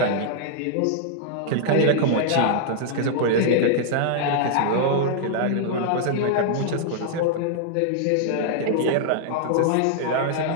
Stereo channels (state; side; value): different; both; correlation -0.01